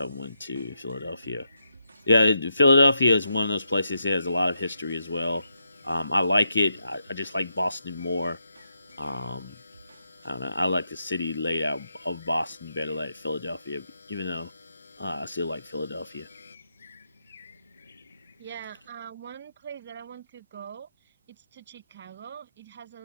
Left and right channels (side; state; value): both; inverted; correlation -0.82